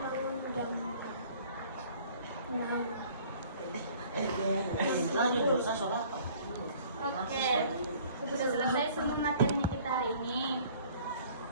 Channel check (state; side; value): inverted; both; correlation -0.53